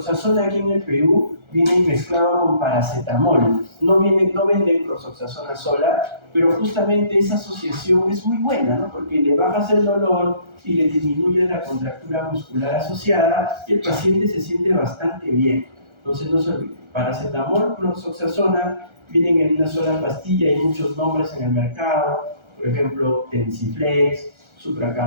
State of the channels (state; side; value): late; left; 1.3 ms